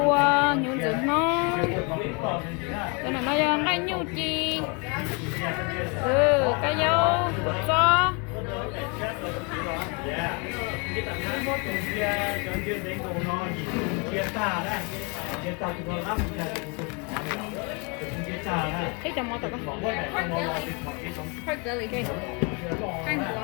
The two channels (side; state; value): right; quieter; 32.5 dB